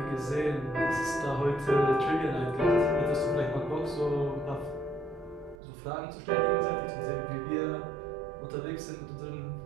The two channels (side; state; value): left; drops out; at 5.6 s